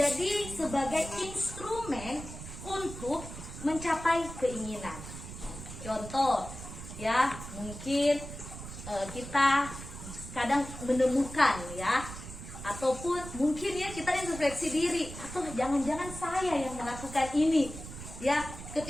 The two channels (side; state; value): right; noise; rumble, 11 dB below the sound